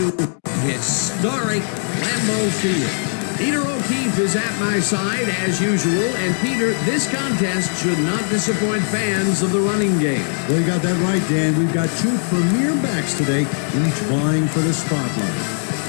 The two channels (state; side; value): silent; right; 58 dB below the other